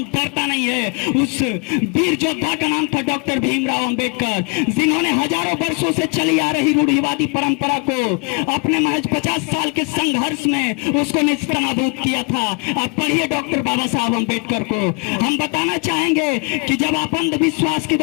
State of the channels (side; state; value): right; quieter; 31.6 dB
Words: डरता नहीं है। उस वीर योद्धा का नाम था डॉक्टर भीमराव अंबेडकर, जिन्होंने हजारों वर्षों से चली आ रही रूढ़िवादी परंपरा को अपने महज 50 साल के संघर्ष में उसको निस्तानाबूद किया था। आप पढ़िए डॉक्टर बाबा साहब अंबेडकर को। हम बताना चाहेंगे कि जब आप अंधविश्वास के